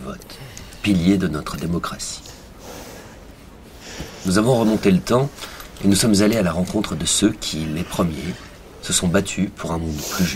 pilier de notre démocratie. Nous avons remonté le temps et nous sommes allés à la rencontre de ceux qui, les premiers, se sont battus pour un monde plus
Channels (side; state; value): both; identical; correlation 1.00